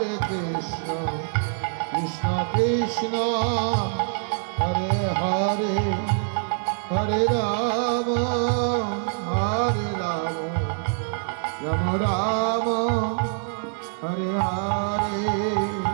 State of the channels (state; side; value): silent; left; digital silence